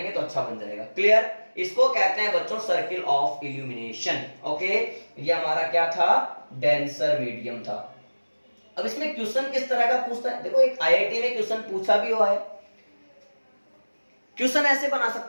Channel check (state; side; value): inverted; both; correlation -1.00